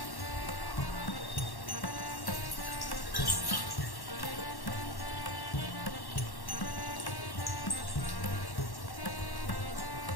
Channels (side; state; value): right; late; 1.1 ms